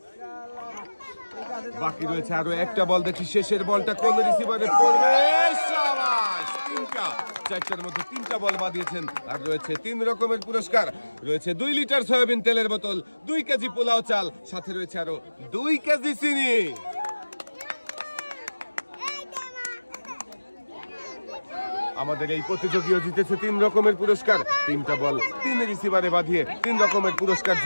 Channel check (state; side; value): inverted; both; correlation -1.00